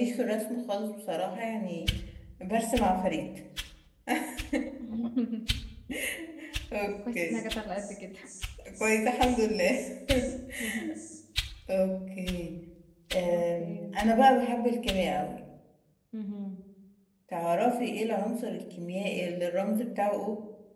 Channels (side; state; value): both; identical; correlation 1.00